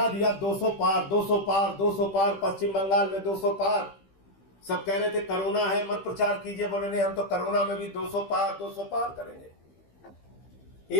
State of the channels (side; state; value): right; late; 15 ms